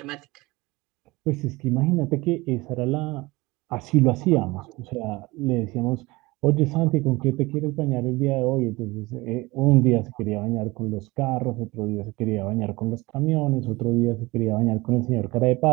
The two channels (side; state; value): left; quieter; 21.9 dB